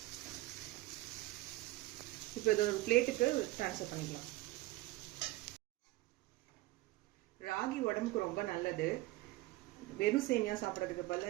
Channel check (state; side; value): quieter; left; 18.7 dB